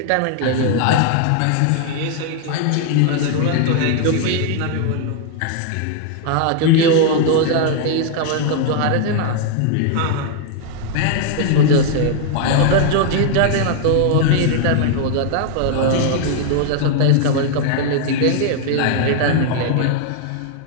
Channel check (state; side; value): different; both; correlation 0.00